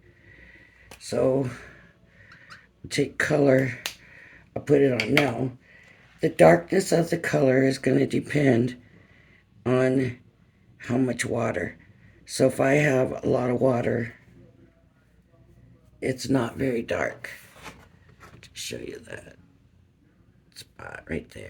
so take color, I'll put it on now. The darkness of the color is going to depend on how much water. So if I have a lot of water, it's not very dark. To show you that spot right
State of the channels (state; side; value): identical; both; correlation 1.00